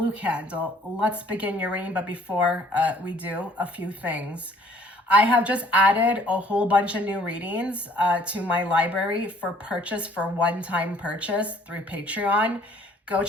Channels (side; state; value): both; normal; correlation 0.58